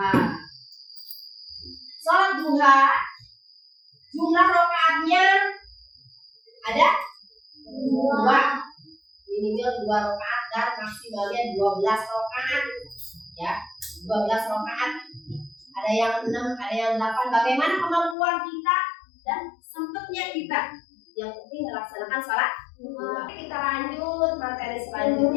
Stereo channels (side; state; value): right; drops out; at 18.2 s